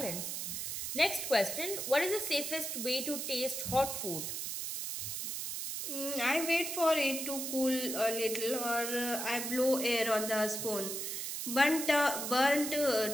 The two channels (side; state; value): right; noise; hiss, 4 dB below the sound